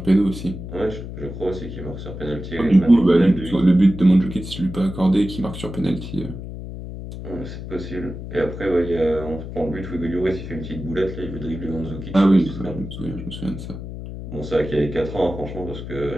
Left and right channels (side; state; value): left; noise; hum, 9 dB below the sound